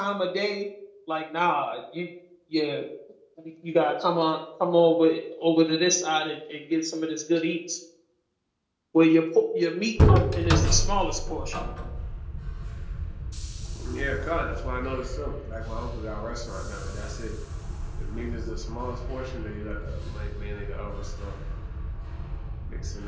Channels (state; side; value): identical; both; correlation 1.00